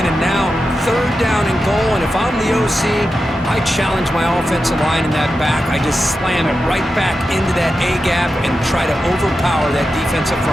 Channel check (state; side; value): normal; both; correlation 0.90